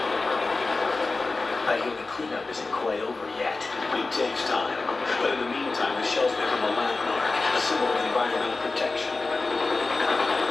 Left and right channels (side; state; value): right; quieter; 3.6 dB